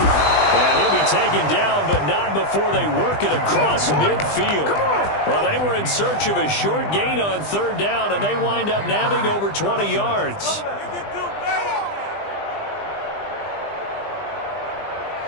he'll be taken down, but not before they work it across midfield. Well, they were in search of a short gain on 3rd down, and they wind up nabbing over 20 yards.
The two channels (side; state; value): right; late; 20 ms